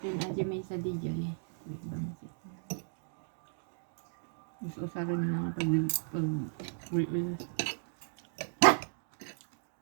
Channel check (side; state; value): left; silent; digital silence